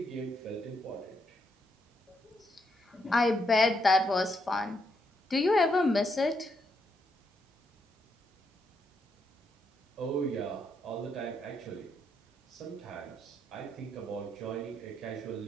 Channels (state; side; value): normal; both; correlation 0.78